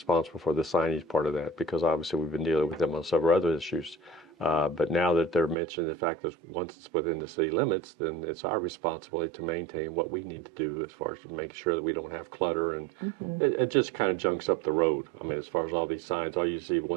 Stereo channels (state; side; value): drops out; left; at 5.6 s